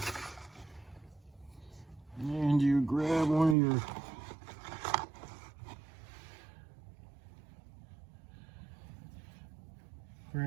And you grab one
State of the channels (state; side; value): drops out; left; at 3.6 s